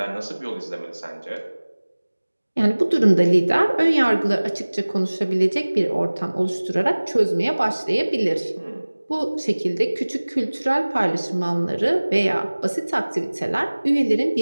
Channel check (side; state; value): both; inverted; correlation -1.00